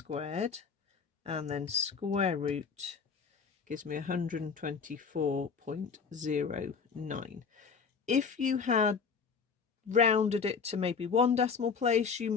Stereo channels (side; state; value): right; quieter; 5.8 dB